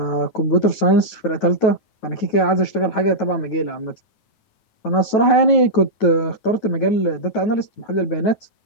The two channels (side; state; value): right; late; 9.2 ms